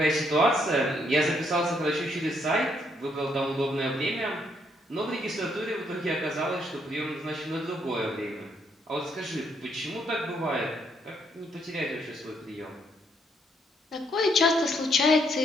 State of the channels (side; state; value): both; normal; correlation 0.72